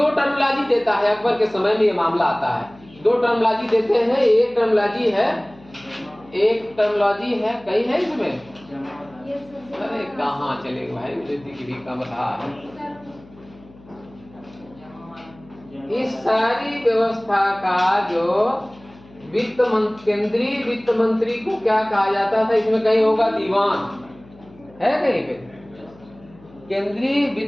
टर्मोलॉजी देता है। अकबर के समय में ये मामला आता है। 2 टर्मोलॉजी देते हैं। एक टर्मोलॉजी है, कई है इसमें? अरे कहाँ चले भाई, मुझे दिख भी कम रहा है। इस सारी व्यवस्था का जो केंद्रीय वित्त मंत्री को क्या कहा जाता था? इसमें कहीं होगा दीवान, है कहीं पे? केंद्रीय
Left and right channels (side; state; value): left; noise; hum, 24 dB below the sound